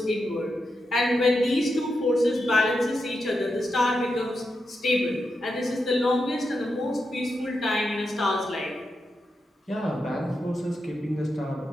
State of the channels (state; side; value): normal; both; correlation 0.87